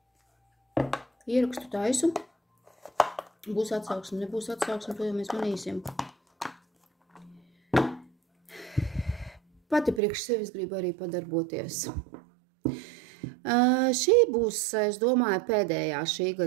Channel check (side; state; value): left; drops out; at 10.0 s